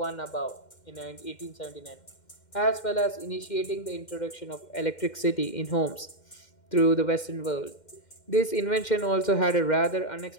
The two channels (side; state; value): right; late; 2.1 ms